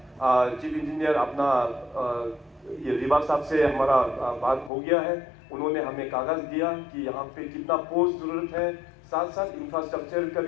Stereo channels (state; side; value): drops out; right; at 4.7 s